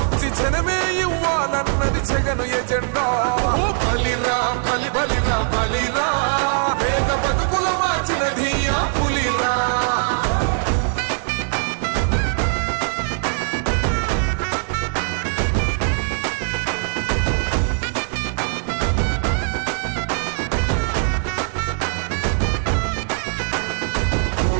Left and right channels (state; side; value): silent; left; digital silence